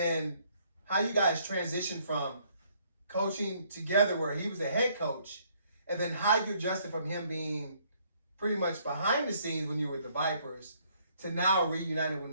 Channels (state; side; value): inverted; both; correlation -0.66